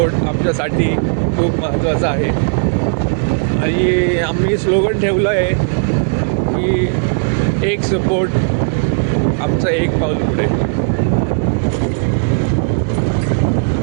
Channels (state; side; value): silent; left; digital silence